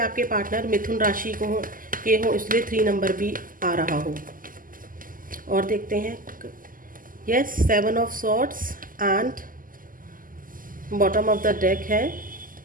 पार्टनर मिथुन राशि के हो, इसलिए 3 नंबर भी आ रहा हो। और देखते हैं, yes, 7 of swords and bottom of the deck है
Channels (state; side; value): late; left; 0.41 ms